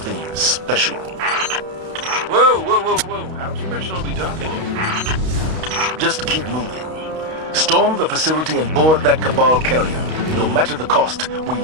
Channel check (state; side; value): late; left; 32 ms